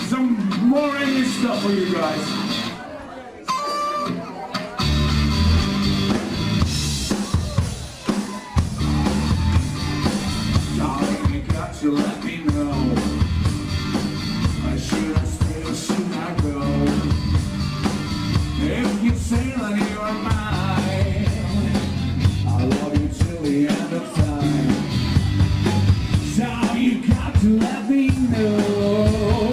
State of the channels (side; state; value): both; identical; correlation 1.00